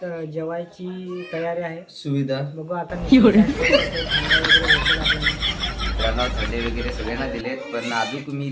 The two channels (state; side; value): identical; both; correlation 1.00